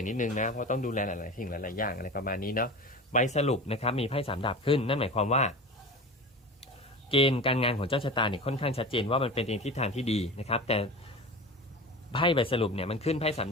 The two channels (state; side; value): normal; both; correlation 0.31